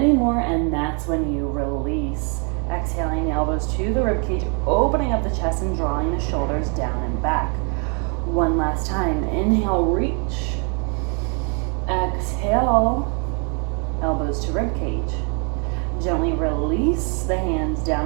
and that's when you release. Exhaling, elbows to the ribcage, opening up the chest and drawing the shoulders down and back. One last time. Inhale, reach. Exhale, elbows to ribcage. Gently release the hands down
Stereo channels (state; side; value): quieter; left; 37.6 dB